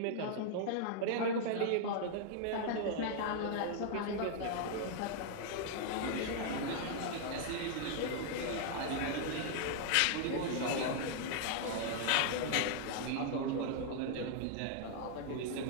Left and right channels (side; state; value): both; different; correlation 0.00